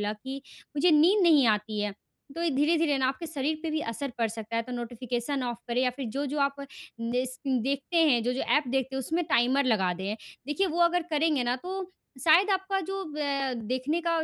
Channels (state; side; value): identical; both; correlation 1.00